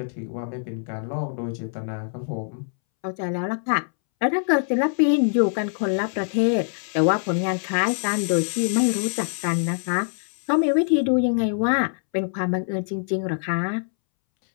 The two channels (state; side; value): silent; right; 63 dB below the other